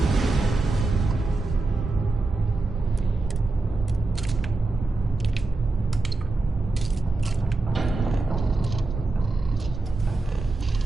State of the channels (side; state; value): left; quieter; 3.3 dB